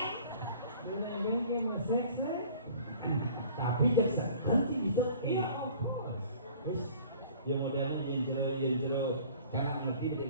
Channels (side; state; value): both; inverted; correlation -0.49